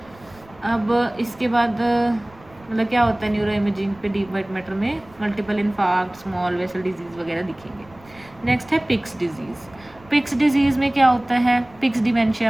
अब इसके बाद मतलब क्या होता है न्यूरो इमेजिंग पे डीप वाइट मैटर में, multiple infarct, small vessel disease वगैरह दिखेंगे। नेक्स्ट है पिक्स डिजीज़। पिक्स डिजीज़ में क्या होता है, पिक्स डिमेंशिया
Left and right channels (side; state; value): right; noise; rumble, 25 dB below the sound